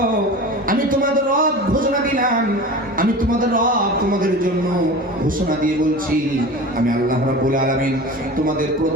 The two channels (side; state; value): both; normal; correlation 0.34